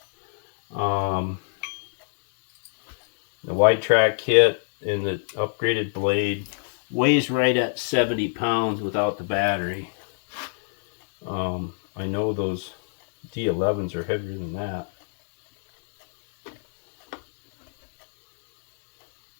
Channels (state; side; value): silent; right; digital silence